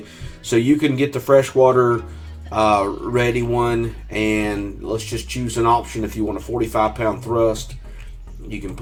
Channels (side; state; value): both; identical; correlation 1.00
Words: so you can get the freshwater ready one, and let's just choose an option. If you want a 45-pound thrust, you can